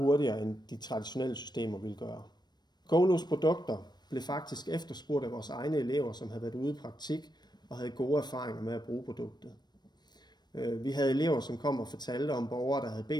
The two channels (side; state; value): right; late; 0.21 ms